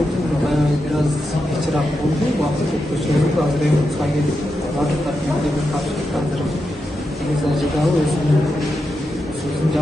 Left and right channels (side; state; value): both; normal; correlation 0.87